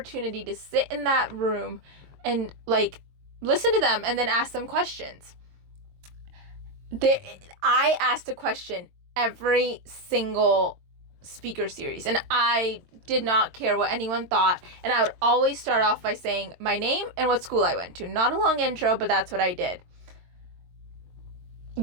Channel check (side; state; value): left; late; 22 ms